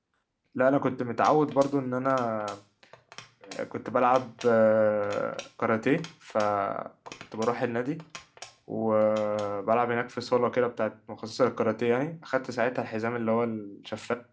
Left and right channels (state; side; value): identical; both; correlation 1.00